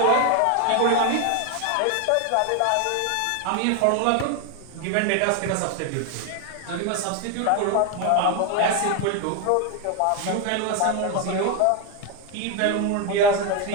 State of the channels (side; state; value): both; different; correlation 0.01